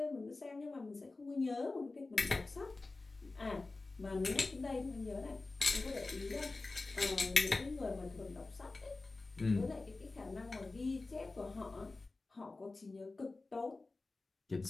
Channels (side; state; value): right; quieter; 3.5 dB